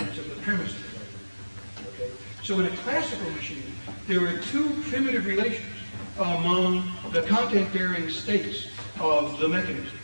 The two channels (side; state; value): both; inverted; correlation -1.00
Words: of the premise of the argument. Okay? So in a classical machine, there are two primitive relations among the content-bearing states of the mechanism.